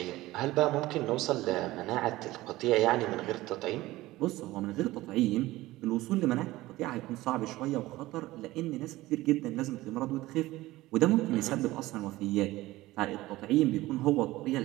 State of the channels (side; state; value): left; quieter; 17.8 dB